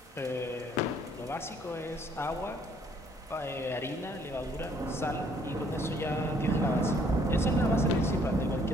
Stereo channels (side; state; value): both; normal; correlation 0.63